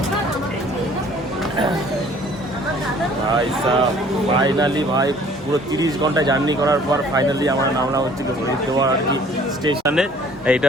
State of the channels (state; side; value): normal; both; correlation 0.54